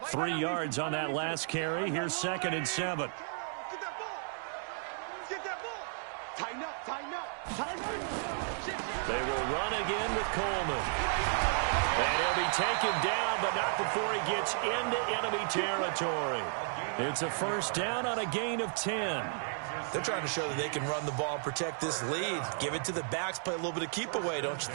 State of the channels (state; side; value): silent; left; digital silence